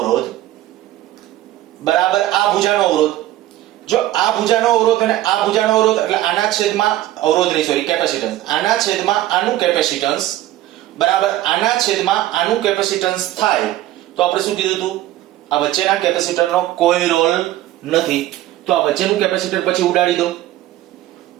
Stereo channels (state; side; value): quieter; left; 14.6 dB